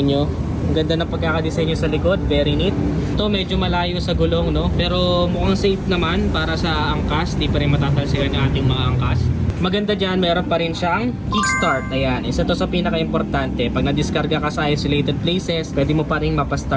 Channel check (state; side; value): identical; both; correlation 1.00